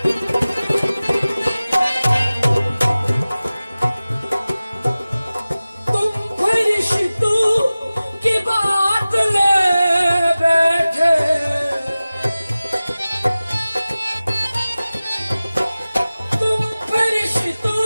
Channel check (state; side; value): inverted; both; correlation -0.97